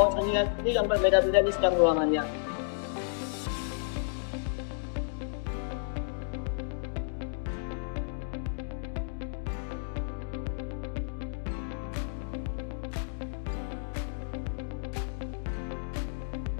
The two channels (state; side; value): silent; right; digital silence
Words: saringan yang berbeda-beda di setiap ruangannya.